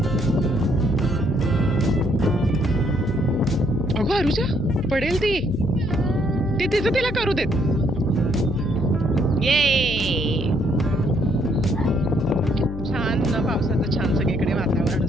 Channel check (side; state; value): left; noise; hum, 8 dB below the sound